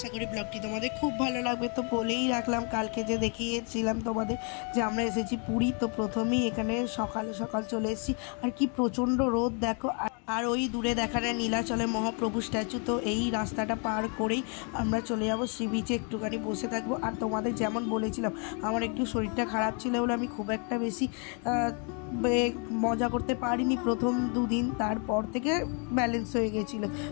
করি ব্লগটি তোমাদের খুব ভালো লাগবে। তো বলেই রাখলাম, কালকে যে দেখিয়েছিলাম তোমাদের যে আমরা এসেছি পুরী, তো প্রথমেই এখানে সকাল সকাল চলে এসেছি। আর কি প্রচণ্ড রোদ দেখো। আর ওই দূরে দেখা যায় নীলাচলের মহাপ্রভু স্ট্যাচু। তো এই রাস্তাটা পার করেই আমরা চলে যাবো সি বিচে, একটুখানি বসে থাকবো। আর তোমাদের যেমন বলেছিলাম, আমার একটু শরীরটা খারাপ ছিল বলে আমি খুব একটা বেশি মজা করতে পারিনি প্রথম দুদিন, তারপর থেকে ব্যালেন্স হয়ে গেছিলো।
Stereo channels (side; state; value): right; quieter; 37.5 dB